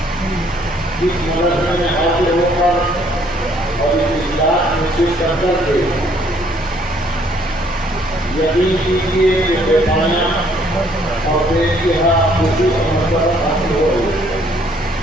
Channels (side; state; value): both; normal; correlation 0.64